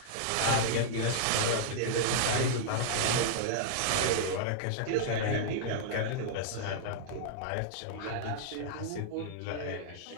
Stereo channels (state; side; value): different; both; correlation -0.01